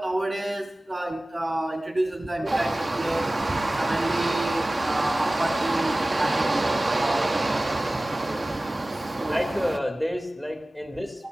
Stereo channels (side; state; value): both; normal; correlation 0.97